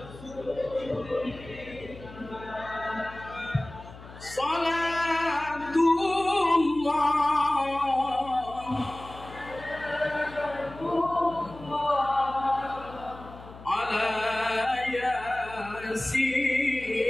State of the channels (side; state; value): left; noise; hum, 17 dB below the sound